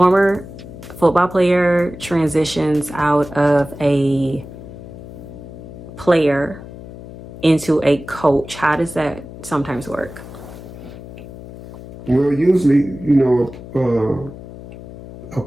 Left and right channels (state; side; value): noise; left; hum, 14 dB below the sound